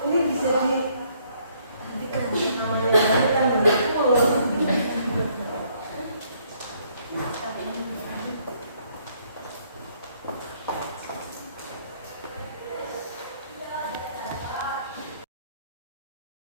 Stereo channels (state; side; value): inverted; both; correlation -0.67